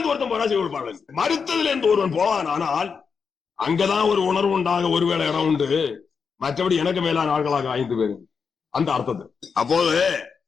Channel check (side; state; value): right; quieter; 5.8 dB